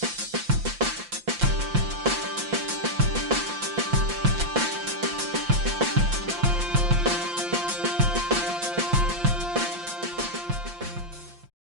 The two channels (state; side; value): late; left; 5.8 ms